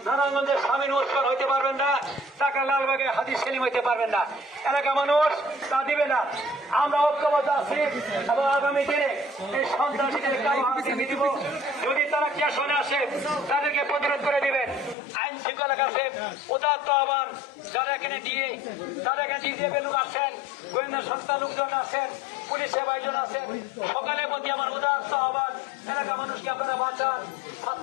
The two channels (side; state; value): right; drops out; at 15.0 s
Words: নারায়ণগঞ্জের স্বামীন ওসমান হইতে পারবেন না, ঢাকা লালবাগে হাজি সেলিম হইতে পারবেন না। এলাকা মানুষ তা দিবে না। আমরা ঐক্যবদ্ধ আছি এবং আগামী দিনে এই সন্ত্রাসীদের কারো হাতে দিব। যদি তারা কেশনে আসে, তাদেরকে প্রতিরোধ করে দিবেন। আইন শৃঙ্খলা কাছে উদাত্ত আহ্বান, যারা এখানে ডিজিএফ লোক আছেন, গোয়েন্দা সংস্থার লোকজন আছেন, পুলিশের ভাইজন আছেন, সকালের প্রতি আমার উদাত্ত আহ্বান, এলাকা মানুষকে আপনারা বাঁচান।